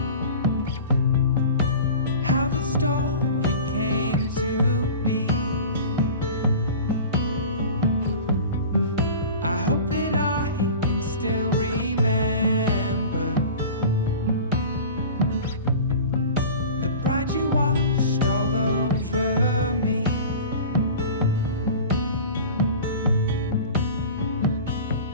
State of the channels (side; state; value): both; inverted; correlation -0.37